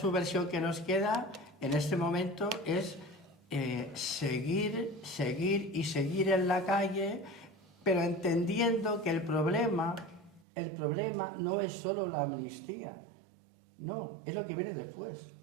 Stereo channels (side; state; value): left; drops out; at 10.5 s